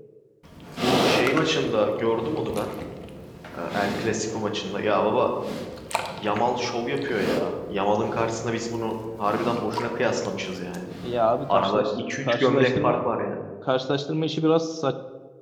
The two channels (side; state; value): both; identical; correlation 1.00